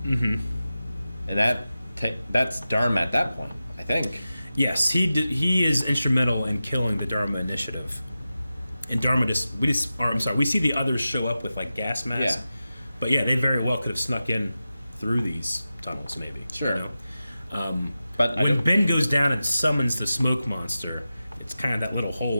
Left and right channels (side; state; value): both; inverted; correlation -0.93